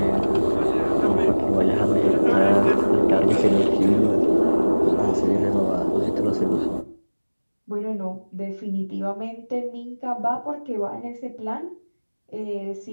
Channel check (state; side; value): inverted; both; correlation -1.00